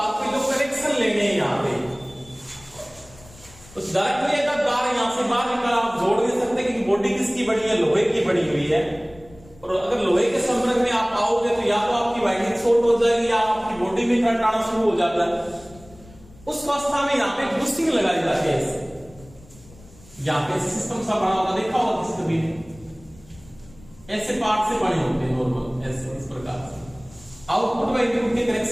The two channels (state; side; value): noise; left; rumble, 24 dB below the sound